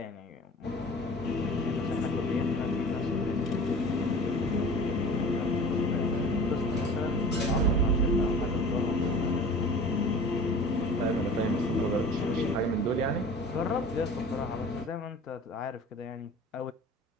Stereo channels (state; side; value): normal; both; correlation 0.41